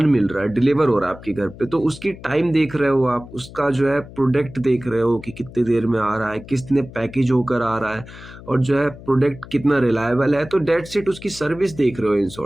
मिल रहा है, डिलीवर हो रहा है आपके घर पे, तो उसकी टाइम देख रहे हो आप, उसका जो है प्रोडक्ट देख रहे हो कि कितने देर में आ रहा है, कितने पैकेज होकर आ रहा है, और जो है प्रोडक्ट कितना रिलायबल है। तो डेट्स इट, उसकी सर्विस देख रहे हो इन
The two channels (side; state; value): left; noise; hum, 17 dB below the sound